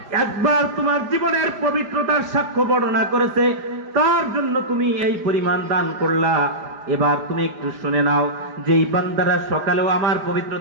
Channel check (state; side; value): late; left; 5.0 ms